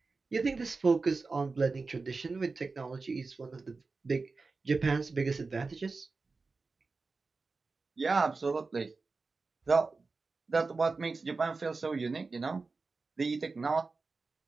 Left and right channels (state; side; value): quieter; left; 4.0 dB